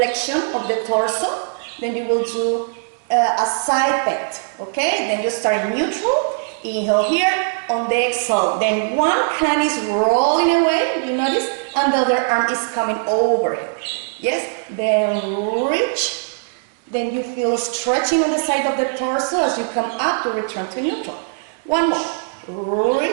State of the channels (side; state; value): left; silent; digital silence